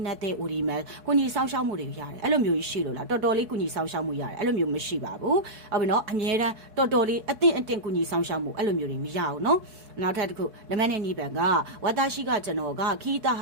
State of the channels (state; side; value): late; left; 4.7 ms